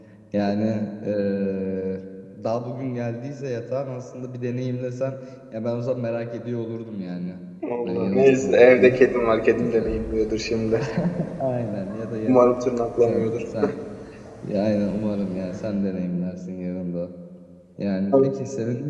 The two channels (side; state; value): both; identical; correlation 1.00